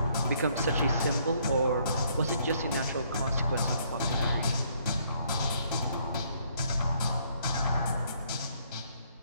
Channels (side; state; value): both; inverted; correlation -0.67